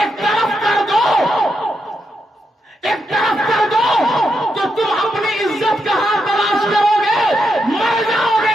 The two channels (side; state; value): both; normal; correlation 0.83